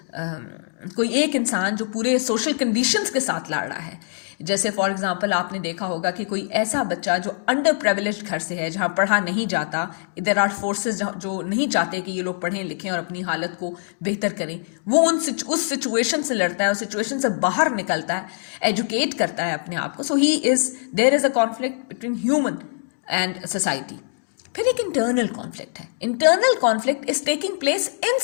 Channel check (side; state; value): right; silent; digital silence